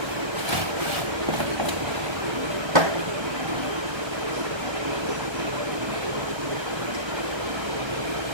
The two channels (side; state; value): left; late; 1.3 ms